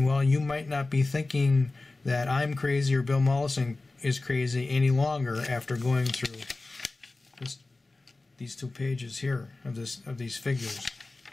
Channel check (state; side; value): quieter; right; 3.2 dB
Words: you might not be thinking that I'm crazy or Bill Mollison is crazy any longer after going through these 2 pages here of these figures.